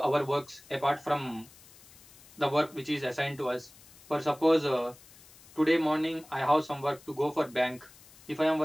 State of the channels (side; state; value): left; noise; hiss, 23 dB below the sound